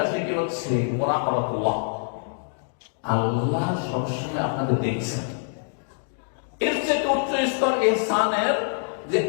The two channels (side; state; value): right; silent; digital silence